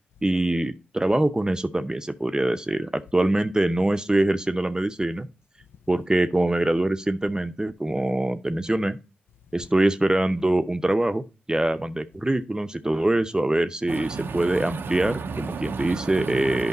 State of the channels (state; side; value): normal; both; correlation 0.97